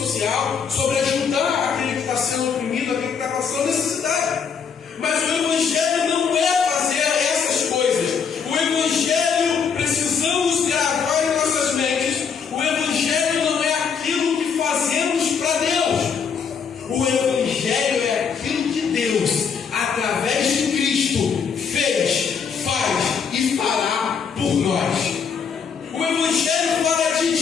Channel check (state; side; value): quieter; right; 6.5 dB